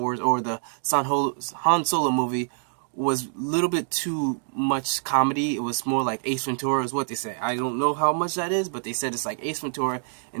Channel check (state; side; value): silent; left; digital silence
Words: or the Han Solo movie was a little bit too much comedy. It was more like Ace Ventura is what they say. I don't know how much that is, but they said it's like Ace Ventura,